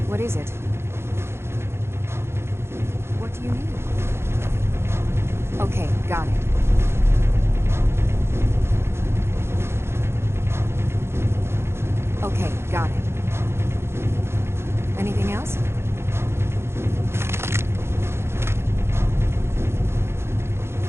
what is it? What do you need? Okay, got it. Okay, got it. Anything else?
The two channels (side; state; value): left; late; 0.12 ms